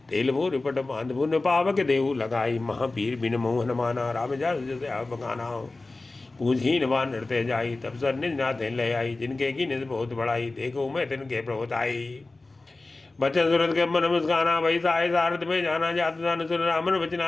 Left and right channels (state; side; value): quieter; right; 3.3 dB